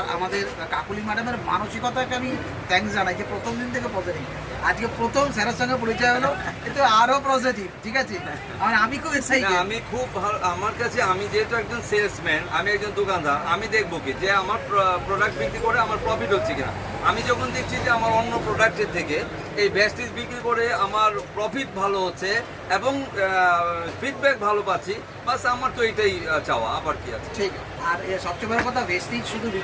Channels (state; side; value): identical; both; correlation 1.00